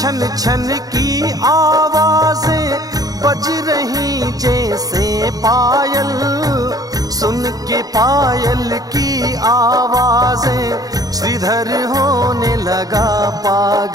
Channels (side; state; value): left; late; 0.18 ms